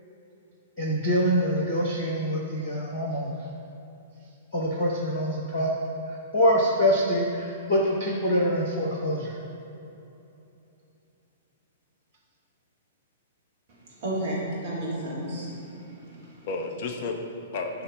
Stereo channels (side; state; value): both; inverted; correlation -0.36